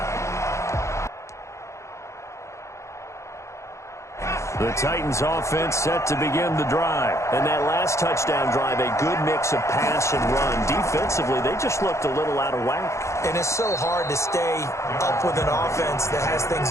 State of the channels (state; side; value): late; right; 0.14 ms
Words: The Titans offense set to begin the drive. And that last touchdown drive, a good mix of pass and run. Defensively, they just looked a little out of whack. And it's so hard to stay up with an offense that has